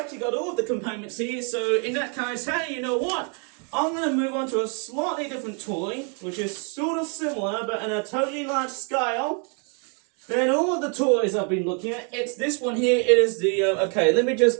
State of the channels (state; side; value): quieter; left; 39.0 dB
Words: got all of the components here. So in that case, hey, you know what? I'm going to move on to a slightly different toy, which is sort of similar, but on a totally large scale than all of the toys I've been looking at. It's this one here. It is the, okay, let me just